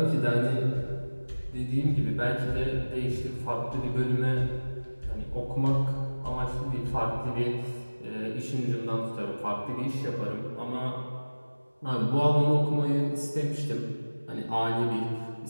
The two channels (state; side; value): inverted; both; correlation -1.00